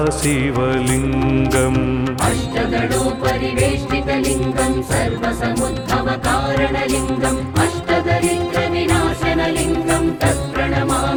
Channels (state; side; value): identical; both; correlation 1.00